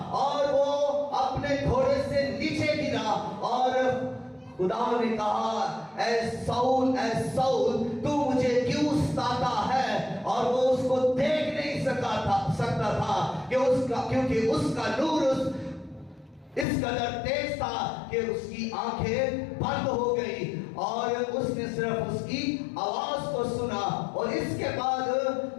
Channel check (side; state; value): right; drops out; at 16.7 s